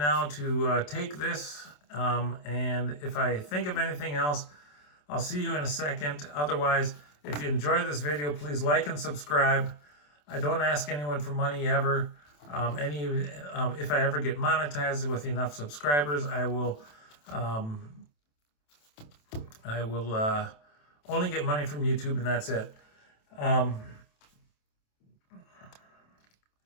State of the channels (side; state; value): right; late; 27 ms